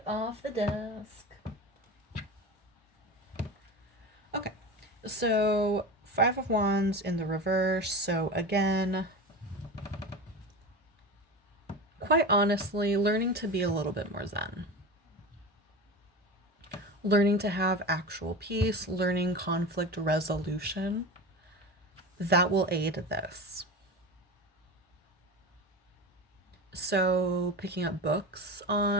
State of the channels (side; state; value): both; normal; correlation 0.27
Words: off the desk. Okay, so 5 of Wands in the reverse. So again, quite honestly, learning to be a little bit more zen. Learning to have actual peace, learning conflict resolution, that will aid this. So, picking up books